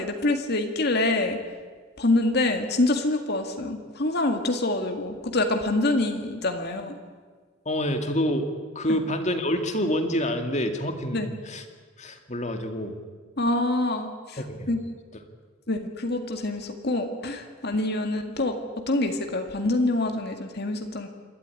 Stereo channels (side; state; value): both; normal; correlation 0.39